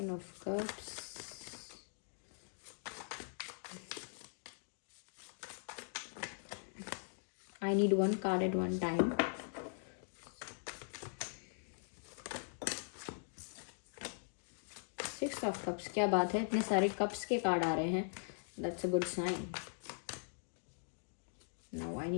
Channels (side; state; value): right; silent; digital silence